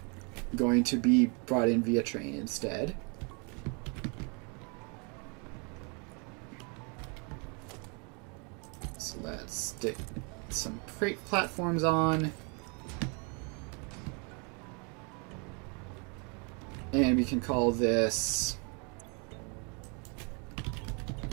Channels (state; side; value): quieter; left; 34.6 dB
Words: going to be brought in via train instead. So let's stick some freight platforms on. And we can call this